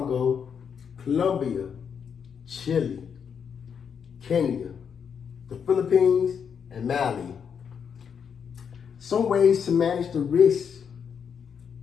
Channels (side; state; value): right; quieter; 7.1 dB